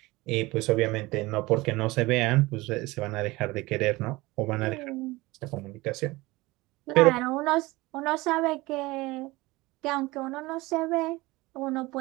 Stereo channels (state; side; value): quieter; left; 21.1 dB